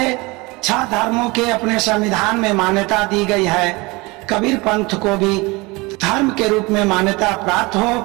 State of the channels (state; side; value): quieter; left; 24.4 dB